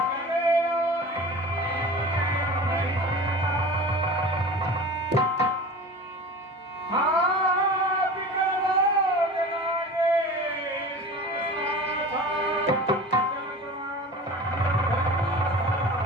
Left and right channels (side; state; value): both; normal; correlation 0.36